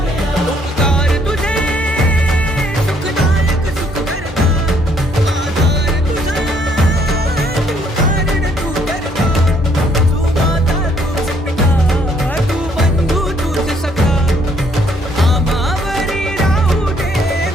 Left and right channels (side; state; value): both; normal; correlation 0.67